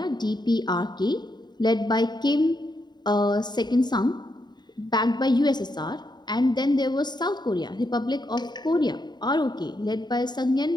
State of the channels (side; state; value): right; late; 0.21 ms